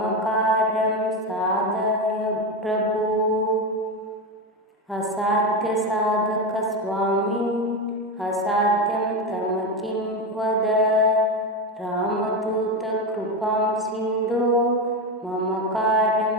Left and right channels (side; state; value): both; normal; correlation 0.16